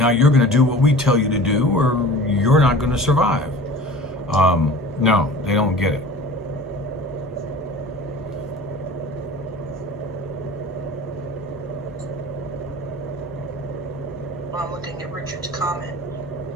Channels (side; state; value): both; normal; correlation 0.40